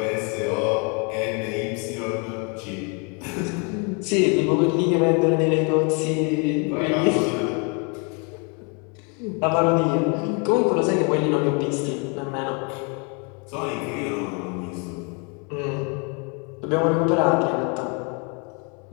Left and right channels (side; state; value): right; quieter; 34.9 dB